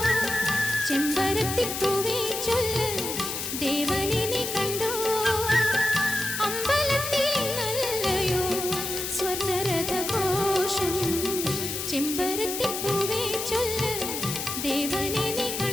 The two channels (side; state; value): left; noise; hiss, 4 dB below the sound